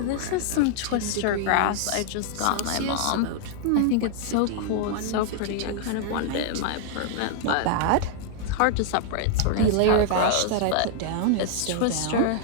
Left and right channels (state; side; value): different; both; correlation -0.01